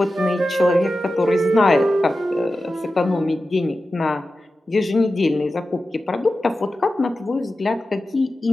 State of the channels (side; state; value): both; normal; correlation 0.93